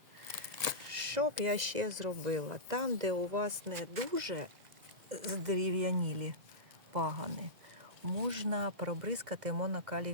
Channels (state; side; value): late; left; 2.0 ms